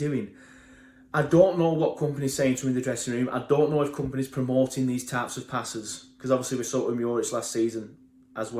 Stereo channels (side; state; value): both; identical; correlation 1.00